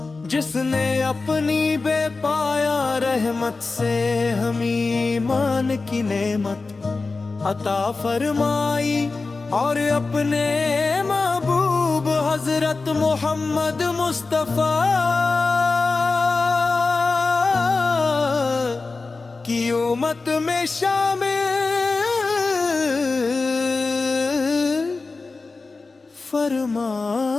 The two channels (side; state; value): right; quieter; 3.9 dB